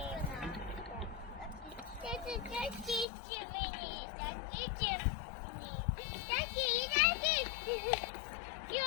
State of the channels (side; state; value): right; drops out; at 3.1 s